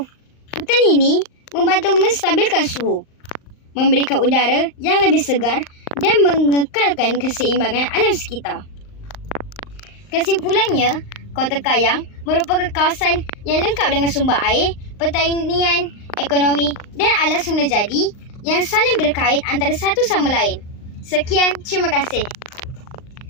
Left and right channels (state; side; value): late; right; 39 ms